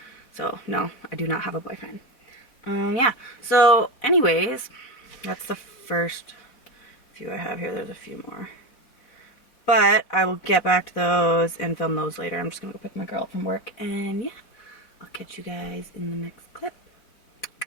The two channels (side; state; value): right; late; 3.9 ms